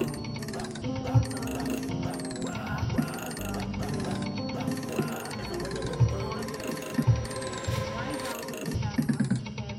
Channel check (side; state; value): both; identical; correlation 1.00